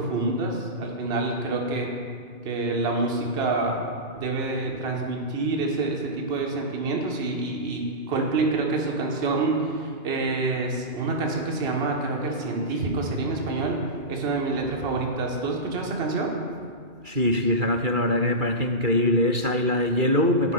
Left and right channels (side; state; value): left; late; 2.4 ms